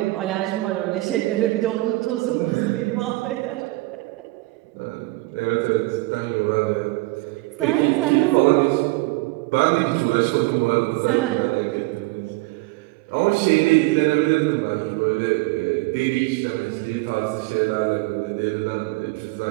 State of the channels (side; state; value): left; quieter; 21.8 dB